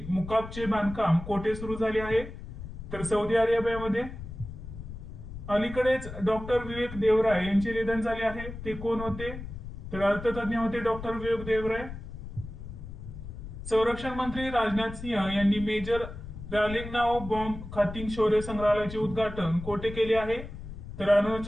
मुकाबचे बांधकाम कोठे सुरू झाले आहे? तर सौदी अरेबियामध्ये. अलीकडेच डॉक्टर विवेक देवराय यांचे निधन झाले आहे, ते कोण होते? तर अर्थतज्ञ होते डॉक्टर विवेक देवराय. संरक्षण मंत्री राजनाथ सिंह यांनी मेजर रालिंगनाओ बॉम्ब खातिंग शौर्य संग्रहालयाचे उद्घाटन कोठे केले आहे? तर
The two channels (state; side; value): noise; left; rumble, 11 dB below the sound